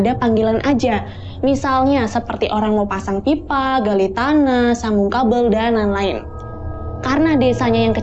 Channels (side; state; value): both; identical; correlation 1.00